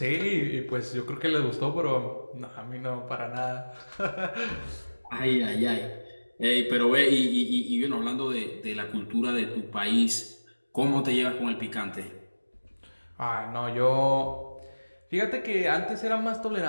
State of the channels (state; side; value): inverted; both; correlation -1.00